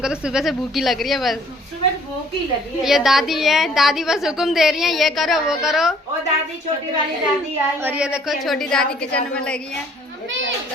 तो सुबह से भूखी लग रही है, बस सुबह भूखी लगी है। ये दादी है, दादी बस हुक्म दे रही है, ये करो वो करो। ओ दादी, छोटी वाली दादी आई। और ये देखो छोटी दादी किचन में लगी है।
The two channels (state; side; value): normal; both; correlation 0.59